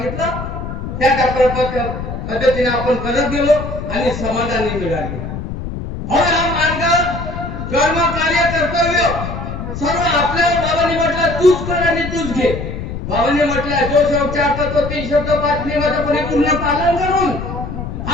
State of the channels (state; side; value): noise; left; rumble, 7 dB below the sound